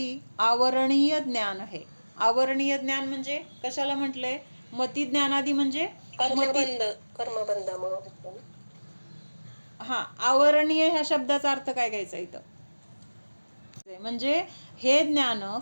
आवरणीय ज्ञान है. आवरणीय ज्ञान म्हणजे कशाला म्हटलंय? मति ज्ञानादि म्हणजे कर्मबंधामुळे. हा, आवरणीय ह्या शब्दाचा अर्थ काय घ्यायचा इथं? म्हणजे हे ज्ञान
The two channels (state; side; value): inverted; both; correlation -1.00